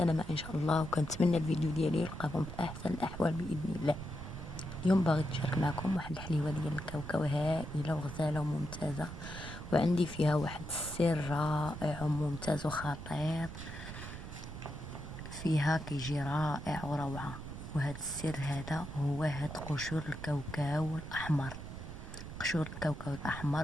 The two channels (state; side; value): noise; right; rumble, 10 dB below the sound